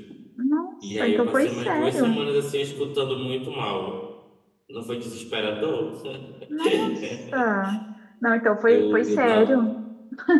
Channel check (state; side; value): identical; both; correlation 1.00